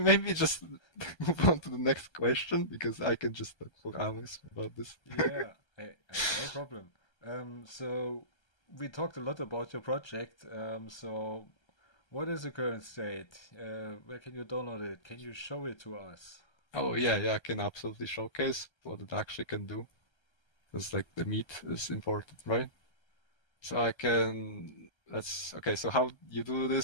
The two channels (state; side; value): late; right; 1.3 ms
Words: just move on to the next question because I can just talk for hours about this. Yeah, no problem. So we talked a lot about your project. So what is the current state? Where can you download it? Can you show it to us? Oh yeah, I can absolutely showcase what it actually can do because like the meat is important, right? So I can let's okay. So how you do